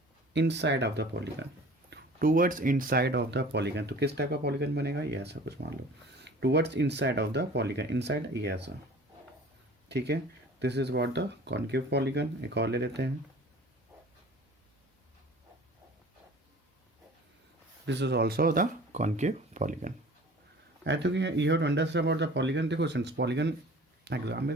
inside of the polygon, towards inside of the polygon। तो किस type का polygon बनेगा, ये ऐसा कुछ मान लो, towards inside of the polygon, inside ये ऐसा, ठीक है। this is what the concave polygon। एक और ले लेते हैं, this is also the concave polygon। I think you have to understand about the polygon। देखो since polygon एग्जाम में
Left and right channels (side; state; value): both; normal; correlation 0.45